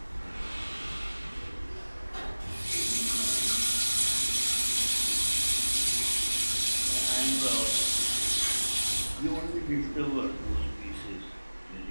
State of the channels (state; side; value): inverted; both; correlation -1.00